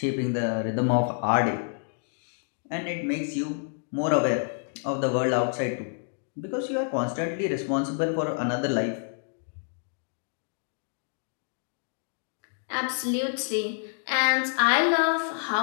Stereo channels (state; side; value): silent; right; digital silence